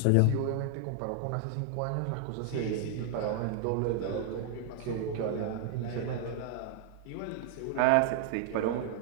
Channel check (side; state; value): both; different; correlation 0.00